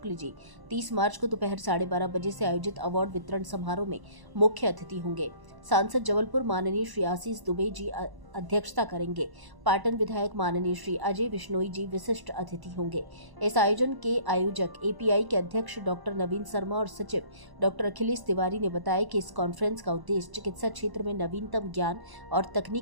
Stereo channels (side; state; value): left; late; 1.0 ms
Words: जी 30 मार्च को दोपहर 12:30 बजे से आयोजित अवार्ड वितरण समारोह में मुख्य अतिथि होंगे। सांसद जबलपुर माननीय श्री आशीष दुबे जी अध्यक्षता करेंगे। पाटन विधायक माननीय श्री अजय बिश्नोई जी विशिष्ट अतिथि होंगे। इस आयोजन के आयोजक एपीआई के अध्यक्ष डॉक्टर नवीन शर्मा और सचिव डॉक्टर अखिलेश तिवारी ने बताया कि इस कॉन्फ्रेंस का उद्देश्य चिकित्सा क्षेत्र में नवीनतम ज्ञान और